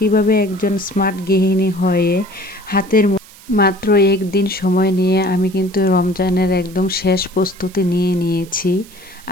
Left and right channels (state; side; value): noise; right; hiss, 22 dB below the sound